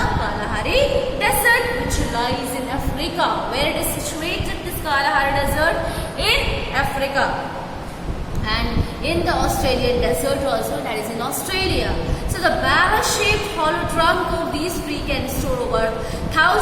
Kalahari desert, which lies in Africa. Where it is situated, this Kalahari desert? In Africa. And in the Australian desert also, that is in Australia. So the barrel-shaped hollow trunk of these trees can store over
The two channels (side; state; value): both; identical; correlation 1.00